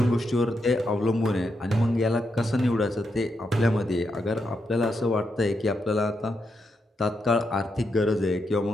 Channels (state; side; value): normal; both; correlation 0.83